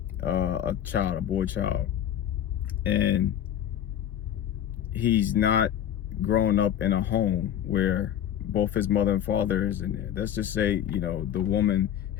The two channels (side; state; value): right; quieter; 10.2 dB